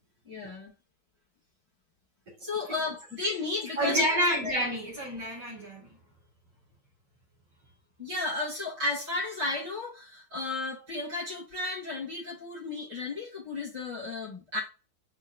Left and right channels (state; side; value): late; left; 7.6 ms